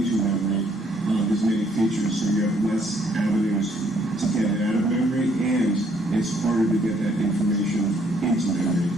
memory as many features, so you have less avenues to get it out of memory, and it's harder to get that information into memory.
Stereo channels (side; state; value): both; normal; correlation 0.67